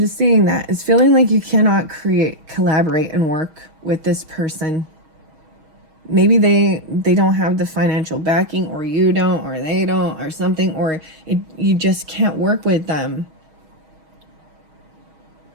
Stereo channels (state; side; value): late; left; 6.3 ms